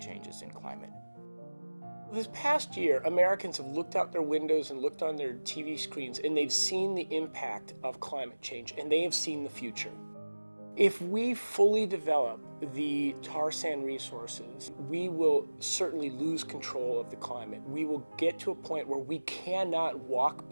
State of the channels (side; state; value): both; inverted; correlation -1.00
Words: in climate. This past year, Americans have looked out their windows and looked on their TV screens, and they've seen the impact of climate change, and they have seen the future. If we fully develop the tar sand resources, we will certainly lose control of the climate. We will get to a point where we cannot walk